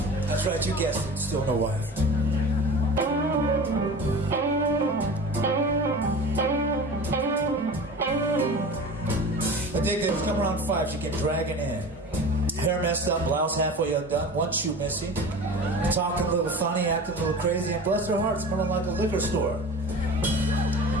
That's right. You guessed it. Still no wife. The day that was coming around 5, she came dragging in. Hair messed up, blouse halfway undone, one shoe missing, talking a little funny, acting a little crazy, and bless her heart, smelling like a liquor store.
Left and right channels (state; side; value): normal; both; correlation 0.35